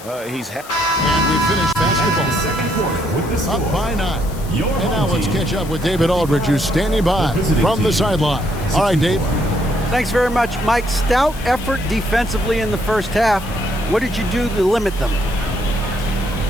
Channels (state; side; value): noise; left; hiss, 18 dB below the sound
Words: And we finished basketball up by 9. And now let's catch up with David Aldridge, who's standing by from the sideline. All right, Dave. Thanks very much, Mike. Stout effort defensively in the first half. What did you do to limit them?